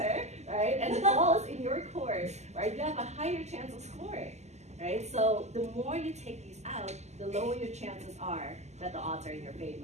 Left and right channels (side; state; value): left; late; 0.33 ms